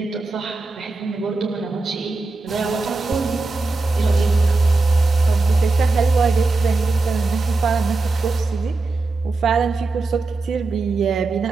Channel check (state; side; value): quieter; left; 3.5 dB